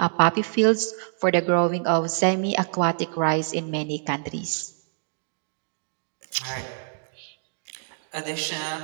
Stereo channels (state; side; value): silent; left; digital silence